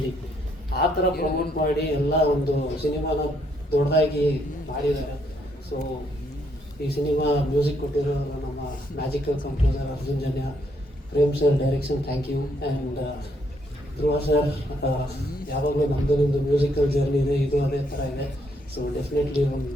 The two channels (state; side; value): normal; both; correlation 0.72